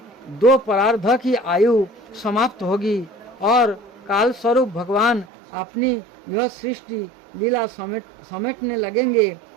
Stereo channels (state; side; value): drops out; left; at 5.2 s